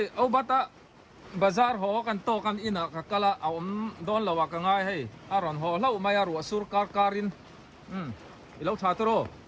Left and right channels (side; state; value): both; identical; correlation 1.00